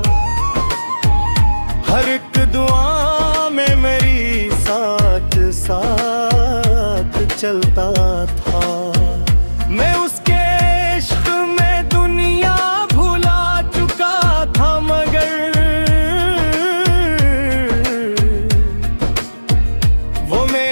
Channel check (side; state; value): both; inverted; correlation -1.00